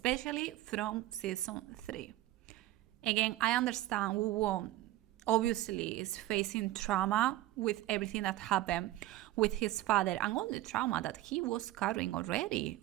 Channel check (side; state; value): left; quieter; 15.8 dB